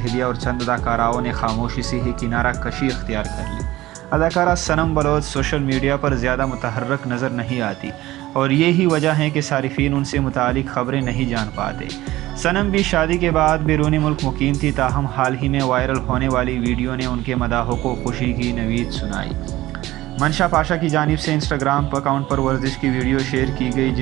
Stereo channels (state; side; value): quieter; left; 16.9 dB